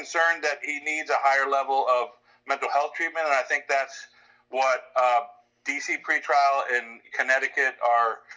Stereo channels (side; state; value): both; identical; correlation 1.00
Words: that he needs a higher level of mental health treatment, and I think that's what DC pretrial in Connecticut are